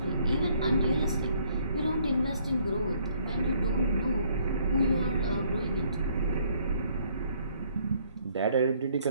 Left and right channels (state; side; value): inverted; both; correlation -0.64